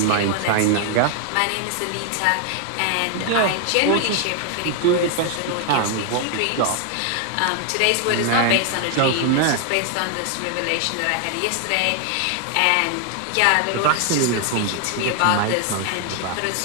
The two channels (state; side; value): different; both; correlation 0.00